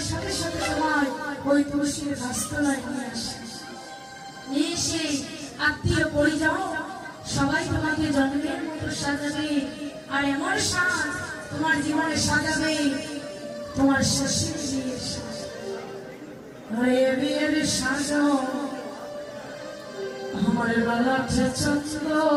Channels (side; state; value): both; identical; correlation 1.00